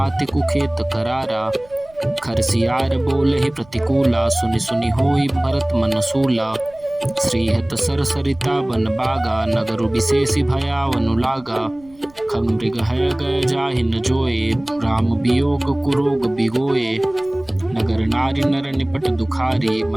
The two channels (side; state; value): right; noise; rumble, 27 dB below the sound